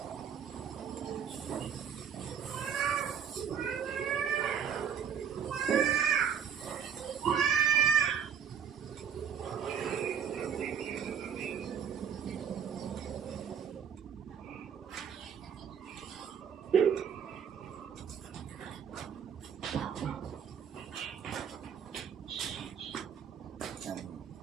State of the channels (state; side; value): quieter; left; 7.9 dB